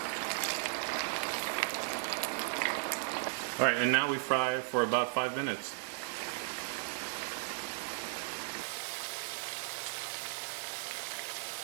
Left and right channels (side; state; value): left; silent; digital silence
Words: Alright, and now we fry for about 5 minutes.